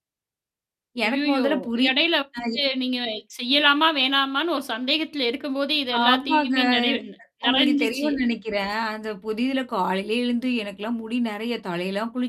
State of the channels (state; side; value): identical; both; correlation 1.00